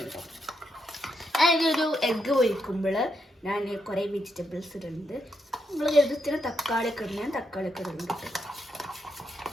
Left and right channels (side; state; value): both; normal; correlation 0.80